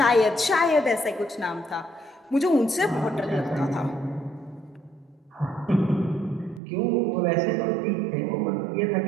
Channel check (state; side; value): drops out; left; at 6.6 s